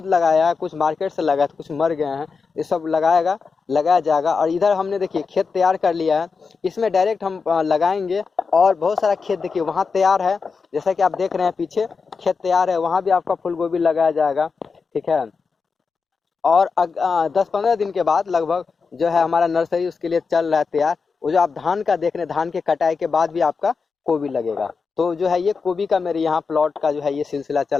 लगाया है, कुछ मार्केट से लगाया, कुछ मर गए हैं। ये सब लगाया जाएगा। और इधर हमने देखिए खेत तैयार कर लिया है, इसमें डायरेक्ट हम लगाएंगे। और बहुत सारा खेत देखिए वहाँ तैयार है, जैसा कि आप देख रहे हैं पीछे खेत तैयार है, वहाँ भी आपका फूलगोभी लगाया जाएगा, ठीक है। और 10-15 दिन के बाद लगभग जो है हमारा नर्सरी उसके लिए चल रहा है तैयार। वो जो आप धान का देख रहे हैं, धान के कटाई के बाद भी आपका गोभी लगेगा। तो जो है ये गोभी का मेरे यहाँ प्लॉट का जो है ये सिलसिला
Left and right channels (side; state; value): right; quieter; 5.0 dB